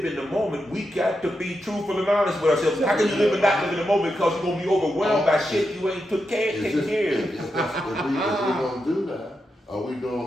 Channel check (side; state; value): both; normal; correlation 0.86